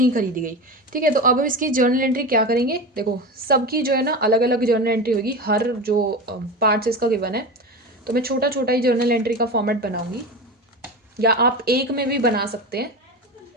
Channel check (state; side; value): normal; both; correlation 0.25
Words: खरीदी गई। ठीक है, तो अब हम इसकी जर्नल एंट्री क्या करेंगे। देखो सबकी जो है ना अलग अलग जर्नल एंट्री होगी, हर जो पार्ट्स इसका गिवन है, तो मैं छोटा छोटा ही जर्नल एंट्री का फॉर्मेट बनाऊंगी, या आप एक में भी बना सकते हैं।